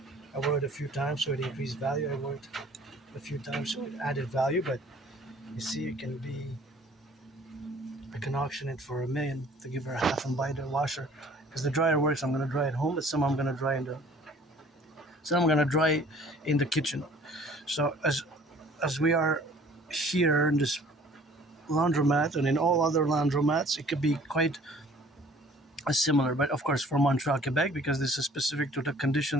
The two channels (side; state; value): both; normal; correlation 0.52